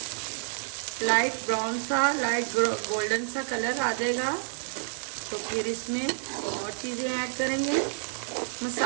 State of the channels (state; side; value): silent; left; digital silence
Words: लाइट ब्राउन सा, लाइट गोल्डन सा कलर आ जाएगा तो फिर इसमें और चीज़ें ऐड करेंगे।